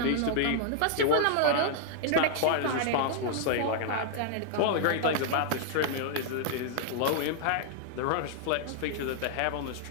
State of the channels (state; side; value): different; both; correlation -0.01